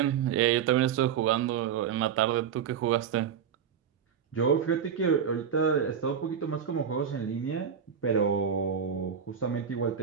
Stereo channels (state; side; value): quieter; left; 7.8 dB